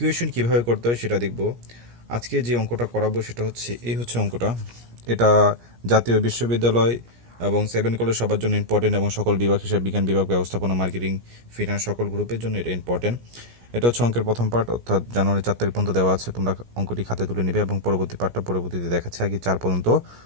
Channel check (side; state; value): left; late; 17 ms